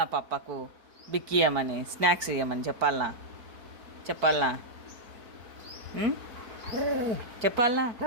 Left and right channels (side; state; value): left; late; 4.6 ms